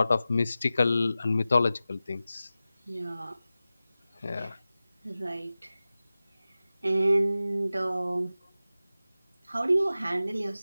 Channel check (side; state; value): both; inverted; correlation -0.95